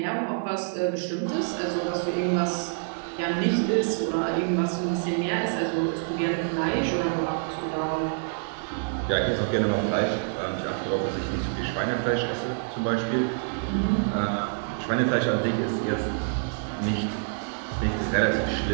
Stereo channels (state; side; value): silent; left; 58 dB below the other